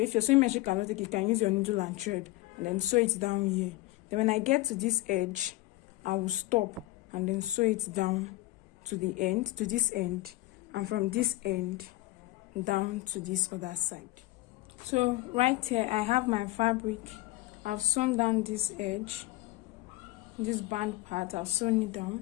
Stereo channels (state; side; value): quieter; right; 19.0 dB